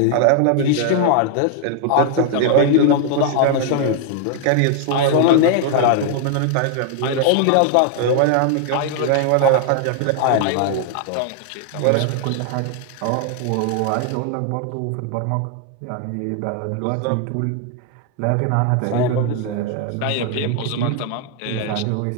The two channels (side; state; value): both; different; correlation 0.00